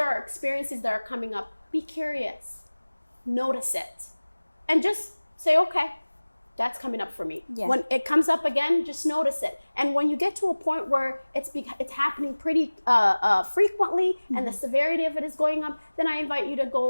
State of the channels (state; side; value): inverted; both; correlation -1.00